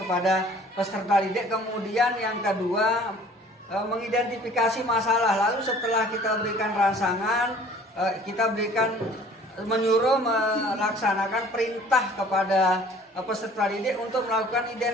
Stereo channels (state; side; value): normal; both; correlation 0.51